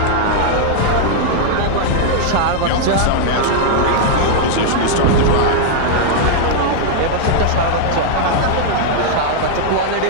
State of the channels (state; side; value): different; both; correlation -0.01